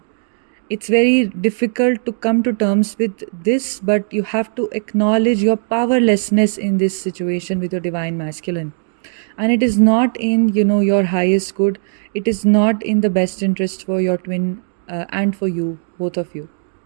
It's very difficult to come to terms with this, but you have to acknowledge your powerlessness in this situation with your divine masculine. And it is not in, your highest good. It is not in the best interest for your twin and for you, both of you.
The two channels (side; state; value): left; silent; digital silence